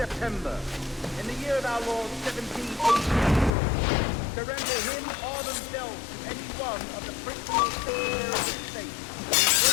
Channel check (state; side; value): drops out; right; at 3.5 s